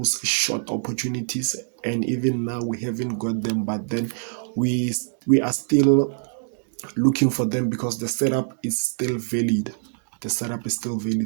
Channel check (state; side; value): silent; left; digital silence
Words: short opportunities, and even now we haven't got them, but then we are still looking for them because the setup is still valid. The setup is still